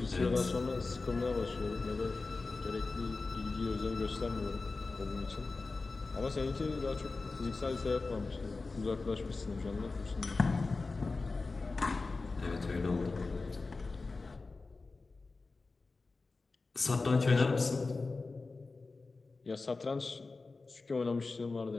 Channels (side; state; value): right; quieter; 3.8 dB